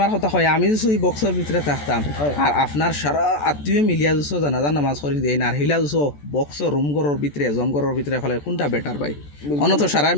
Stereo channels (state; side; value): late; right; 14 ms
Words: কথা হয় আমি যদি এই বক্সের ভিতরে থাকতাম আর আপনার সারা আত্মীয় মিলিয়া যুছো জানাজা নামাজ করি দেয় না আর হিলা যুছো বক্সর রুম ঘরের ভিতরে জমঘরের ভিতরে ফেলে কোনটা বেটার ভাই? অনত সারা